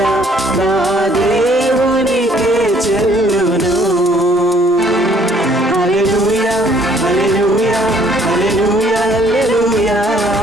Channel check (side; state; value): both; normal; correlation 0.62